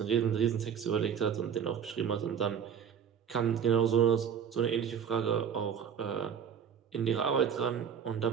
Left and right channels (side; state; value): left; quieter; 7.8 dB